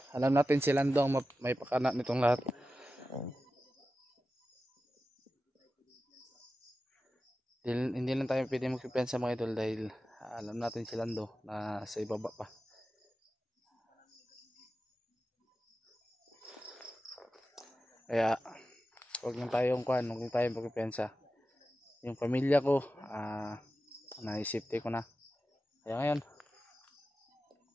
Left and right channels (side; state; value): both; normal; correlation 0.93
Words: Alam natin si Lando ang may pakana nitong lahat. Hindi lang tayo pwede magpipensa mga idol dahil alam natin si Lando na sa ibaba pa. Kaya huwag lang tayong magpipensa. Yung pamilya ko, naisipte ko na. Kaya ngayon,